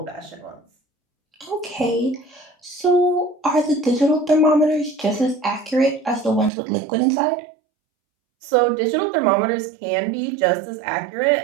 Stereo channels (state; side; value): drops out; left; at 6.5 s